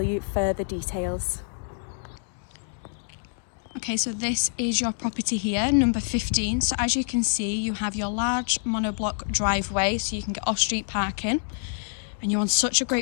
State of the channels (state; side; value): silent; right; 61 dB below the other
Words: you further details. Okay, so this is your property here, number 15. So as you can see, you have your large monoblock driveway, so you can get off-street parking. And you're on such a